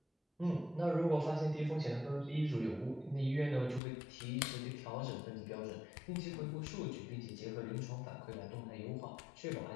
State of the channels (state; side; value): drops out; right; at 3.8 s